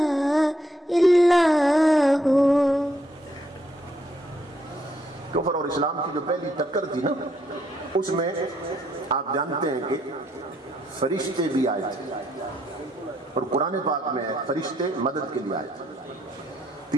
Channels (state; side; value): normal; both; correlation 0.73